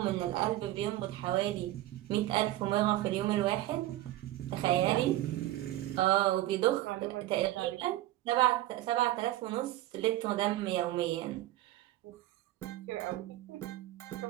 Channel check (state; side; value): quieter; left; 15.6 dB